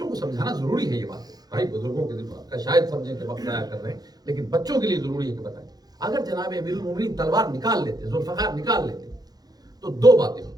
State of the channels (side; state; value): left; late; 0.19 ms